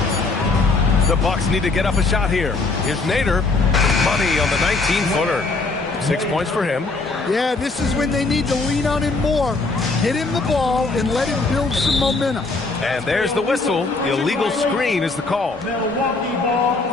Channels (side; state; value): right; quieter; 3.7 dB